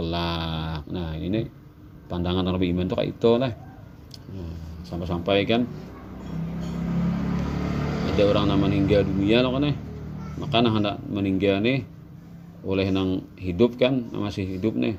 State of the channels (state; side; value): identical; both; correlation 1.00